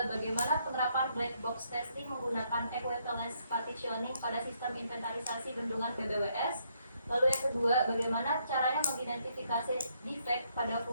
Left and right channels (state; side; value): inverted; both; correlation -0.72